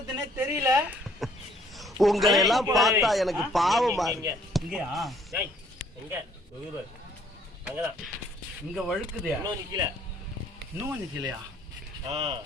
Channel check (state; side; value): normal; both; correlation 0.62